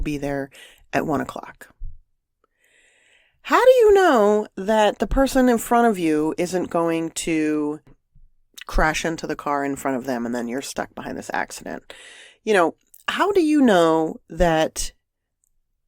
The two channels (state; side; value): identical; both; correlation 1.00